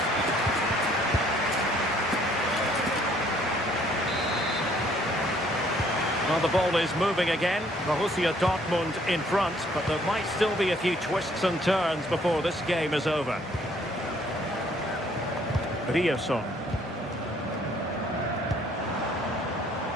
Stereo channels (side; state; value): both; normal; correlation 0.62